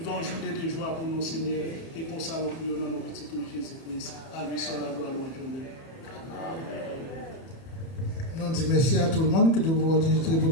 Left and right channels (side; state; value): right; late; 30 ms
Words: une journée de joie pour nos Seigneur. Et comme ça, nous prions dans nos petits Jésus-Christ. À lui seul la gloire, longue journée. Nous disons merci à tout le monde qui doit